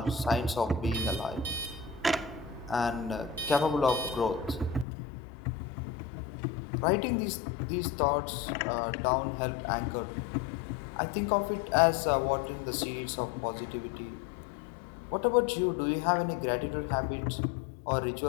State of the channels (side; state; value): right; drops out; at 4.9 s